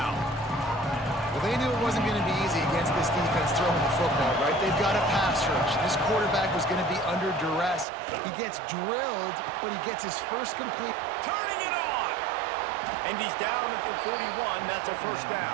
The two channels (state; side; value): drops out; left; at 7.9 s